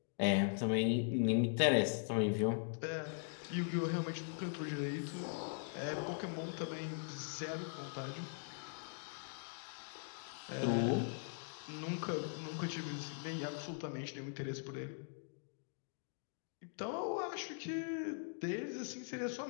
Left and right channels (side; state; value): right; silent; digital silence